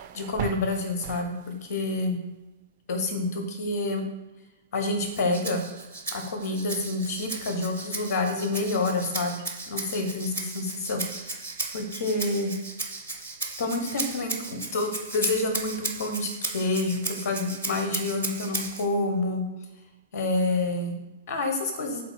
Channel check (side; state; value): both; inverted; correlation -0.31